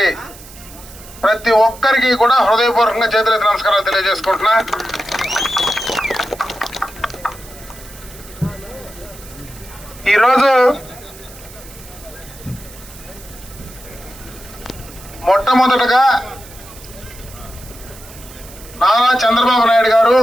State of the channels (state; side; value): noise; right; hiss, 19 dB below the sound